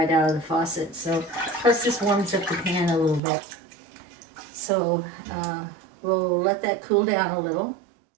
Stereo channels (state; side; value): drops out; left; at 3.2 s